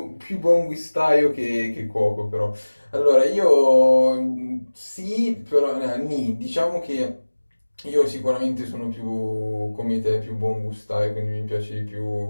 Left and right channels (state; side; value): inverted; both; correlation -1.00